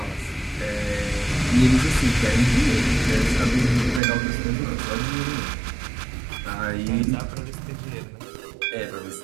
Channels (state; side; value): drops out; left; at 4.0 s